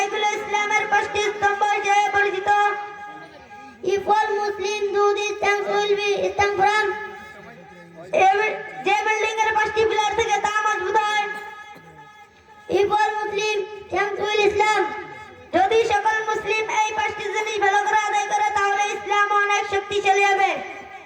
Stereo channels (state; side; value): identical; both; correlation 1.00